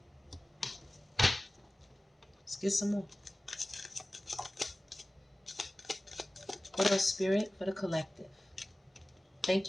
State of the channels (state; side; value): normal; both; correlation 0.97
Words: Let's get some more. What else, Spirit? For the collective. Thank